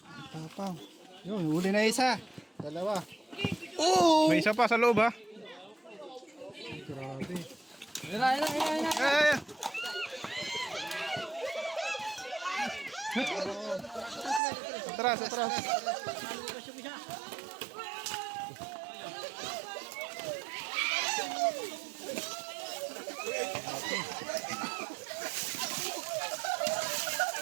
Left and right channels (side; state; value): left; drops out; at 14.4 s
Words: Tapang. Yun, huli na isa. Dalawa. May isa pa sa loob ha. Grabe. Eh. Atras.